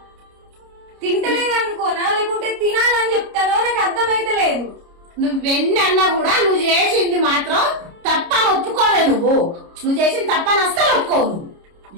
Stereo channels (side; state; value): left; late; 29 ms